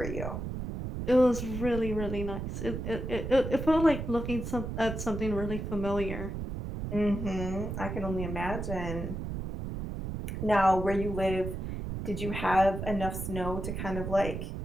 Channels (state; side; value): noise; right; rumble, 5 dB below the sound